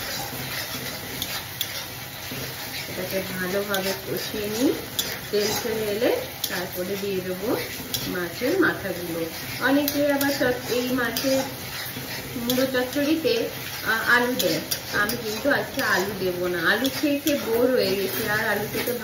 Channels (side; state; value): both; identical; correlation 1.00